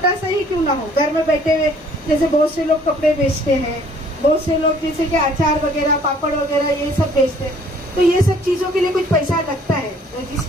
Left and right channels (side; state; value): both; normal; correlation 0.58